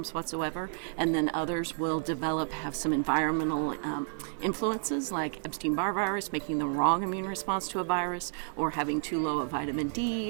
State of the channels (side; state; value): left; silent; digital silence